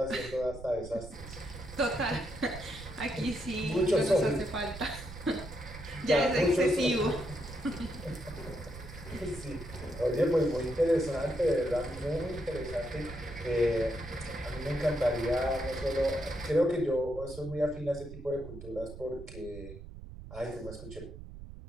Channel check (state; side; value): noise; right; rumble, 13 dB below the sound